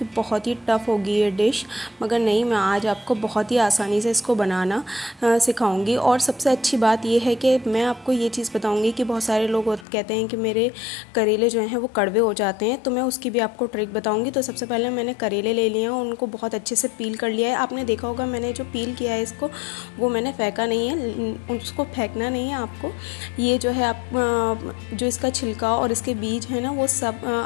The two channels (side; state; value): right; drops out; at 9.9 s